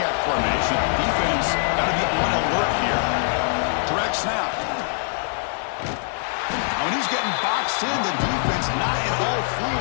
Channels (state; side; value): silent; right; digital silence